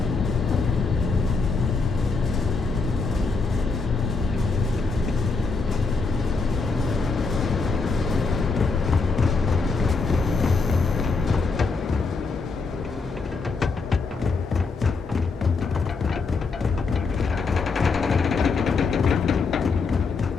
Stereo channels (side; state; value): right; quieter; 4.3 dB